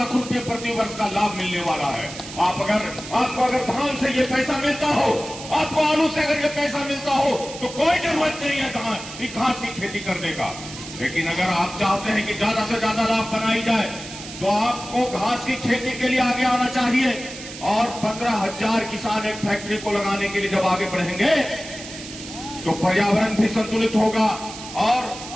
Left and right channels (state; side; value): noise; right; hiss, 12 dB below the sound